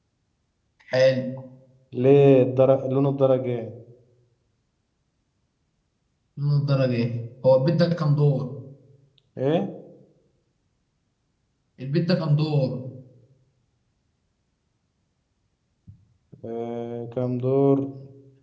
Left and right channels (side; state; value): both; identical; correlation 1.00